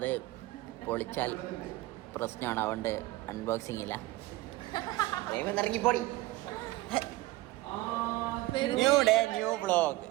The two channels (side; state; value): left; quieter; 18.7 dB